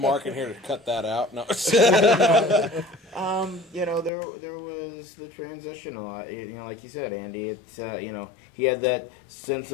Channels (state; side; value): drops out; right; at 4.1 s